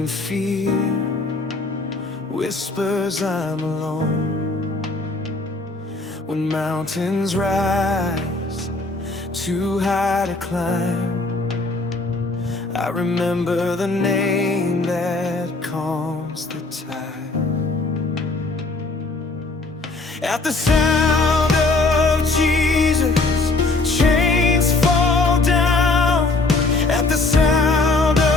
fear whispers I'm alone, when mountains rise too high to climb, I remember the name that calms the tide. At the sound of Jesus, chains fall down. At the sound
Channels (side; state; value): right; quieter; 3.3 dB